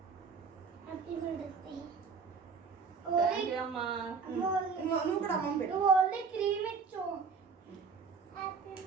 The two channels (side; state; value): left; quieter; 5.3 dB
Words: Happy mother's day. Thank you అమ్మా. నువ్వు కూడా అమ్మమ్మ పెట్టు. నువ్వు ఓన్లీ క్రీమ్ ఇచ్చు. Happy